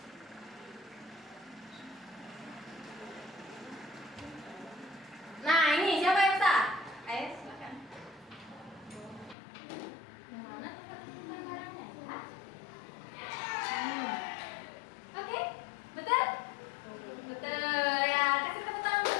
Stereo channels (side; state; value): right; drops out; at 9.3 s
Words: Nah, ini siapa yang bisa? Ayo, silakan. Yang mana tempat menyimpan barangnya ya? Oke, betul? Betul ya, kasih tepuk